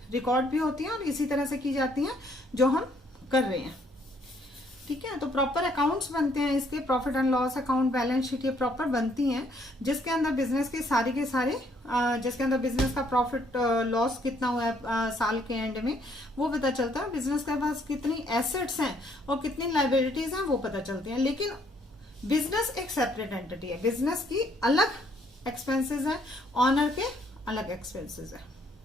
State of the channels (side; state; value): both; normal; correlation 0.67